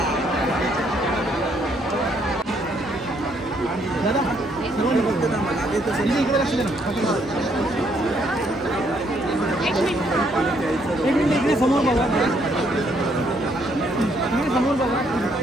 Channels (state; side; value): normal; both; correlation 0.70